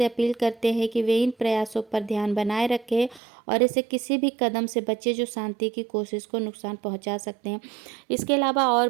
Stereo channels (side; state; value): left; drops out; at 3.2 s